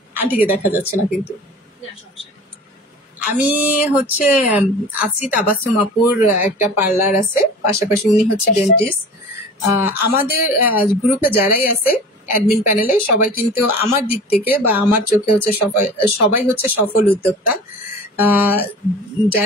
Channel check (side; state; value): both; normal; correlation 0.40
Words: আন্টিকে দেখা যাচ্ছে না কিন্তু। আমি হচ্ছে আছি, তাবাসসুম আপুর একটা পার্লার আছে, পাশাপাশি উনি হচ্ছে ডেন্টিস্ট। আমাদের গ্রুপে যারাই আছে অ্যাডমিন প্যানেলে সবাই কিন্তু আমার দিক থেকে বা আমার চোখে হচ্ছে সবাই হচ্ছে সফল উদ্যোক্তা।